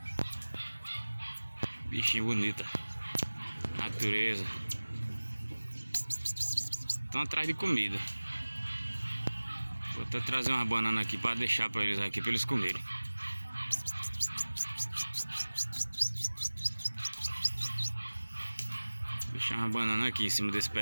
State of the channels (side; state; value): both; inverted; correlation -1.00